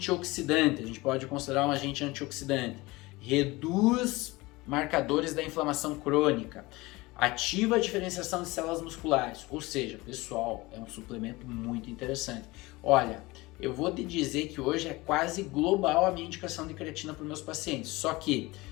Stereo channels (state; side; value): quieter; right; 21.8 dB